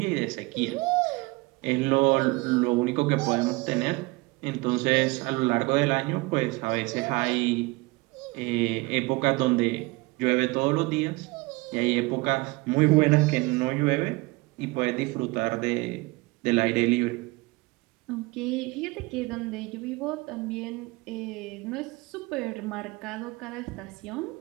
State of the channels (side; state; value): left; quieter; 24.0 dB